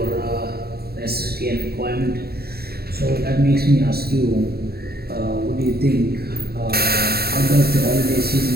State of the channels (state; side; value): late; left; 0.45 ms